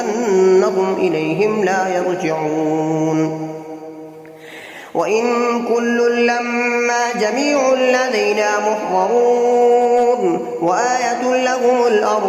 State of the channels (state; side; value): identical; both; correlation 1.00